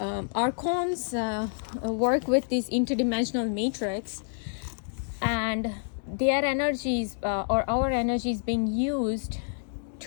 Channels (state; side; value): silent; right; digital silence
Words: archons work with this interdimensional matrix, and their energies or our energies being used